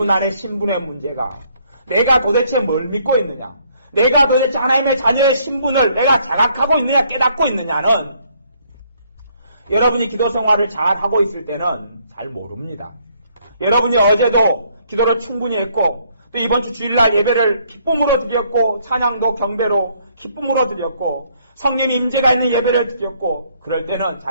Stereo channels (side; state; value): both; inverted; correlation -0.67